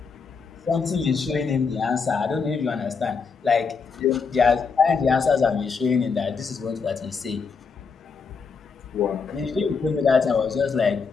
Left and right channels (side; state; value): right; quieter; 5.3 dB